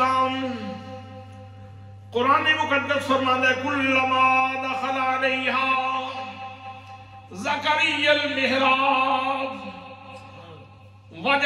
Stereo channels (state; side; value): identical; both; correlation 1.00